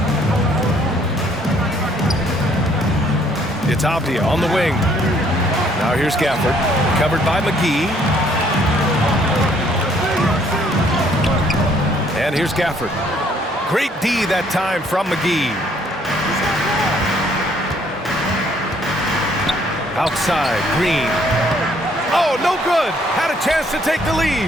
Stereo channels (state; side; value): normal; both; correlation 0.64